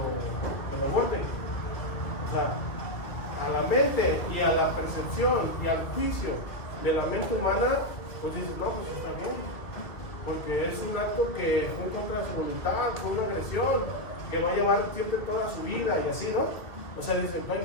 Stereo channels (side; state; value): right; late; 2.4 ms